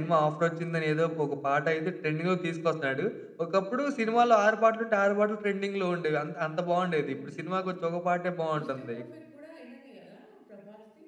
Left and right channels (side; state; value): both; identical; correlation 1.00